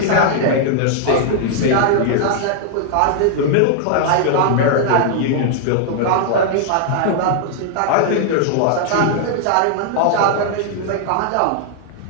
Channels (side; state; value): both; different; correlation -0.01